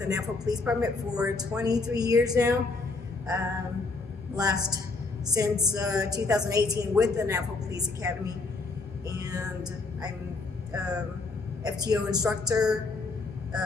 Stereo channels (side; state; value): right; quieter; 3.7 dB